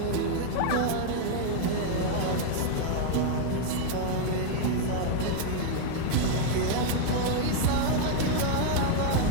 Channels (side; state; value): both; different; correlation 0.00